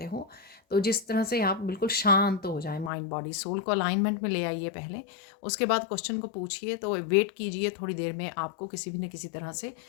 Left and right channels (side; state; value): right; drops out; at 2.9 s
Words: हो। तो जिस तरह से आप बिल्कुल शांत हो जाए, माइंड बॉडी सोल को अलाइनमेंट में ले आइए पहले, उसके बाद क्वेश्चन को पूछिए। तो वेट कीजिए, थोड़ी देर में आपको किसी भी न किसी तरह से